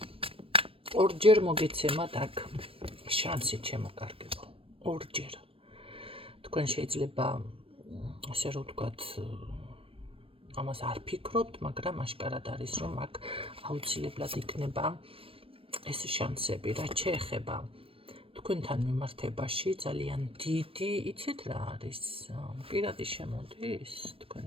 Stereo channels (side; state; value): left; late; 0.27 ms